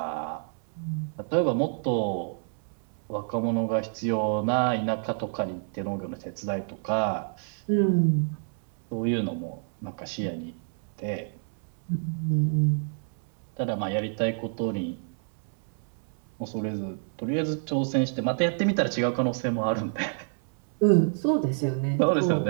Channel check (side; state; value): left; silent; 59 dB below the other